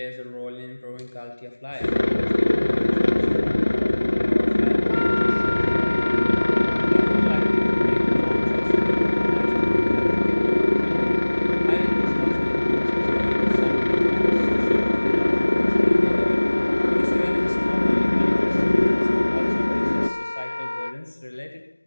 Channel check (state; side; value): inverted; both; correlation -1.00